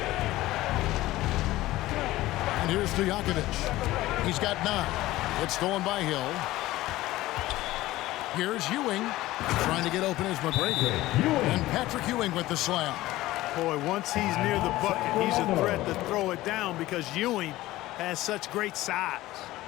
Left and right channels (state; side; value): quieter; right; 16.9 dB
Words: And here's Stojakovic. He's got 9. It's stolen by Hill. Here's Ewing. Trying to get open is McGrady. And Patrick Ewing with the slam. Boy, once he's near the bucket, he's a threat to throw it down because Ewing has such great size.